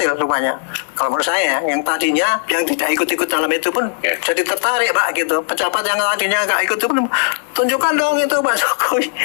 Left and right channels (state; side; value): silent; right; 68 dB below the other